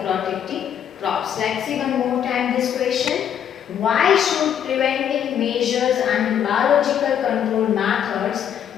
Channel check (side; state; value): right; quieter; 9.1 dB